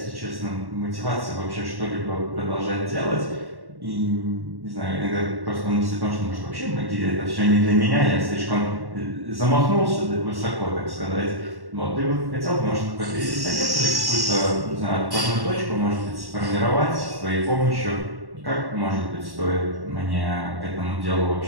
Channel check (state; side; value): late; left; 1.1 ms